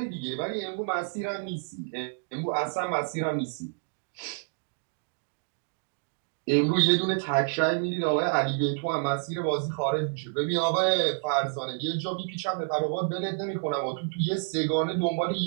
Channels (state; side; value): silent; left; digital silence